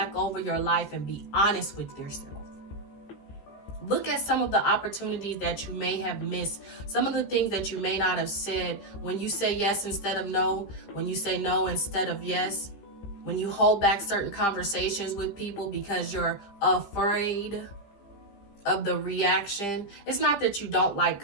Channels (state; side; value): late; right; 15 ms